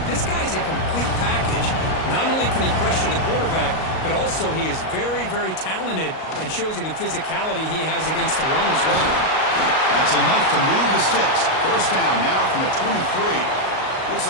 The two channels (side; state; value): right; late; 38 ms